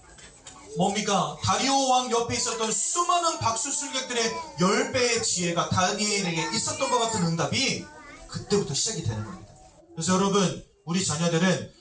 다리오 왕 옆에 있었던 수많은 박수술객들의 10배의 지혜가 다니엘에게 있었던 것 같은 응답이 그때부터 시작이 되는 겁니다. 그래서 여러분, 우리 자녀들은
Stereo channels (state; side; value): identical; both; correlation 1.00